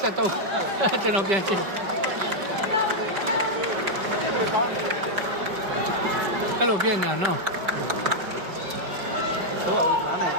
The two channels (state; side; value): late; left; 5.2 ms